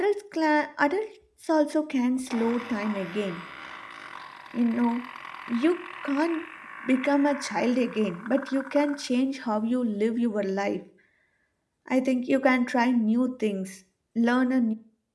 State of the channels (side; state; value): both; identical; correlation 1.00